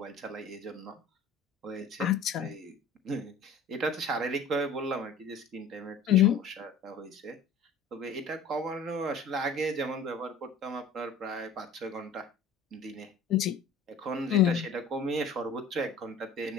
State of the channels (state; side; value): quieter; right; 4.2 dB